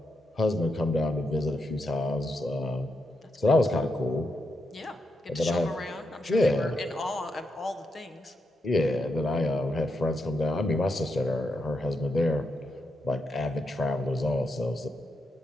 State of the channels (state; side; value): normal; both; correlation 0.83